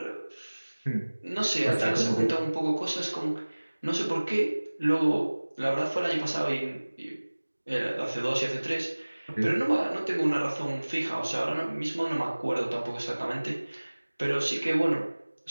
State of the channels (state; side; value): inverted; both; correlation -1.00